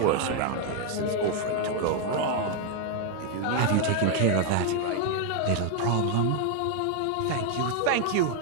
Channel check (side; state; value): both; different; correlation 0.00